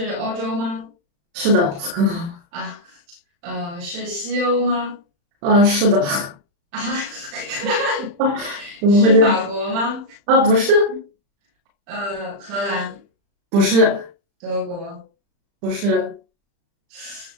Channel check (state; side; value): late; left; 35 ms